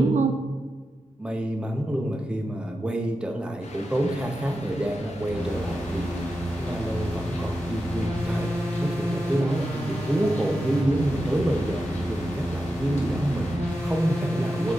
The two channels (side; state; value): both; normal; correlation 0.90